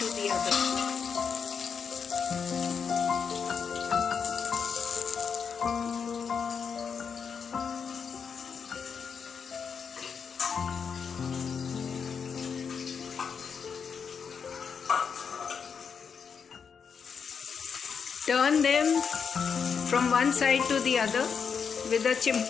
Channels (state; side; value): quieter; right; 6.4 dB